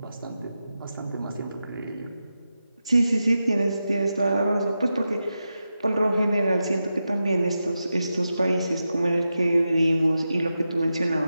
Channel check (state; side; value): inverted; both; correlation -0.90